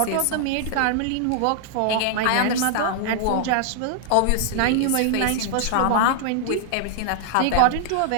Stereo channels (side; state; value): both; different; correlation 0.00